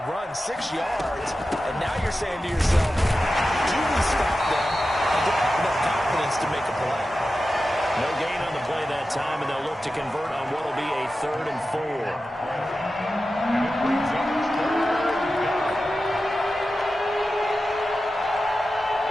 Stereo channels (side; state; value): both; normal; correlation 0.93